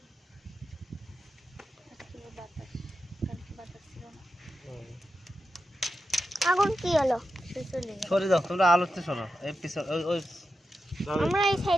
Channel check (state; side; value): normal; both; correlation 0.90